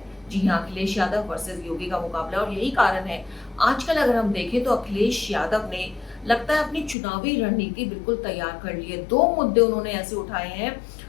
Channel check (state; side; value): drops out; right; at 7.0 s